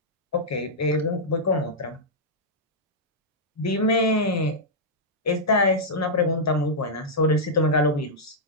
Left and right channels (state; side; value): normal; both; correlation -0.08